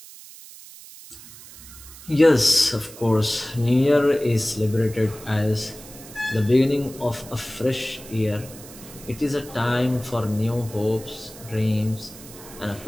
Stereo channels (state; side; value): noise; right; hiss, 17 dB below the sound